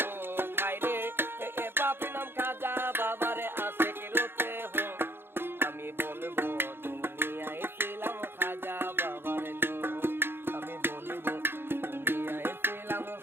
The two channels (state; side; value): late; left; 0.11 ms